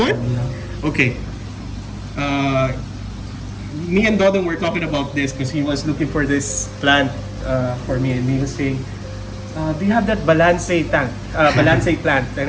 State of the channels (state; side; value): identical; both; correlation 1.00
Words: Yeah. Okay. Me and Dodon were talking about this because he was looking for this plant for me, and he was saying, do you have that Balansae tank, Balansae plant? And